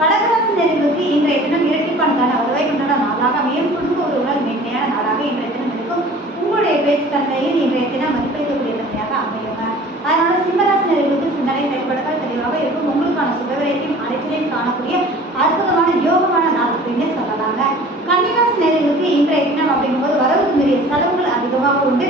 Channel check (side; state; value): both; normal; correlation 0.46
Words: நேயர்களுக்கு இன்றைய தினம் இரட்டிப்பான வருவாய் கொண்டாட நாளாக அமையும். குடும்ப உறவுகள் மேன்மையான நாளாக இன்றைய தினம் இருக்கும். உங்களுடைய பேச்சு தன்மையில் இன்றைய தினம் மதிப்பளிக்கக்கூடிய தன்மையாக அமையுங்க. அதனால சிம்மராசி நேயர்களுக்கு சிந்தனை செயல்பாடுகள் தெளிவாக இருக்கும். உங்களுக்கான சுபவிரயத்தையும் அனைத்திலையும் காணக்கூடிய அற்புதமான யோகமான நாள் அப்படின்னு சொல்லலாங்க. கன்னிராசி நேயர்களுக்கு இன்றைய தினம் அப்படிங்கும்போது வரவுக்கு மீறிய செலவுகள் அதிகமாக உண்டு.